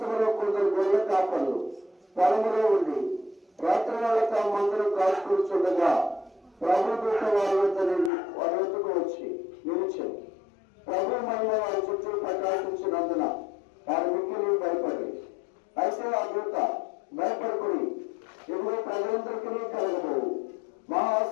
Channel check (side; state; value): right; drops out; at 8.1 s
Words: కొందరు గొర్రెల కాపర్లు పొలములో ఉండి రాత్రి వేళ తమ మందరం కాచుకూర్చుండగా ప్రభుదూత వారి వద్దకు వచ్చి నిలిచారు. ప్రభు మహిమ వారి చుట్టూ ప్రకాశించినందున వారి మిక్కిలి భయపడి, అయితే ఆ దూత భయపడుకుని ఇప్పుడు ప్రజలందరికీ కలగబోవు మహా